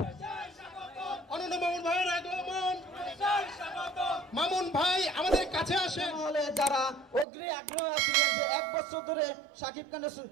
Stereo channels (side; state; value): left; drops out; at 7.2 s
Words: অনন্য মামুন ভাইয়ের আগমন। মামুন ভাই আমাদের কাছে আসে। হলে যারা অগ্রি আগ্রহ ছিলেন যে 1 বছর ধরে